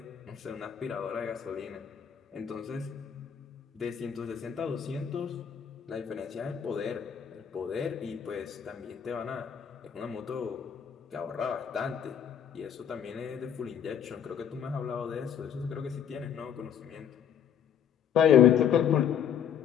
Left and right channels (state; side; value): quieter; right; 8.7 dB